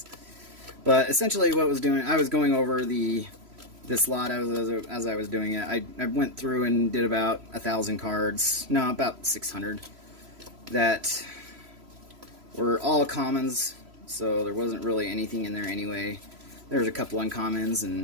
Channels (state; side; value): late; left; 3.0 ms